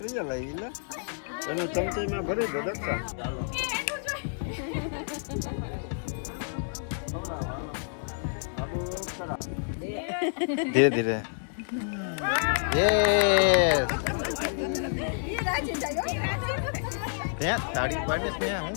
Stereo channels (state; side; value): silent; right; digital silence